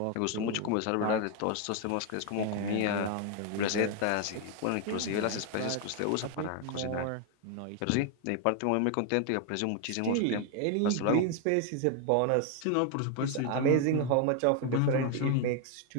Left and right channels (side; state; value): both; different; correlation 0.00